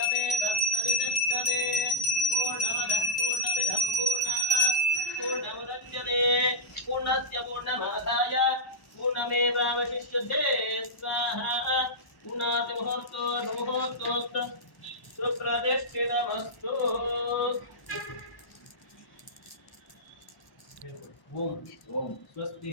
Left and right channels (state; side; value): late; right; 1.0 ms